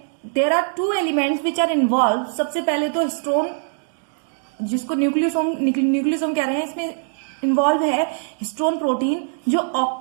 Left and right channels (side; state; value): left; silent; 64 dB below the other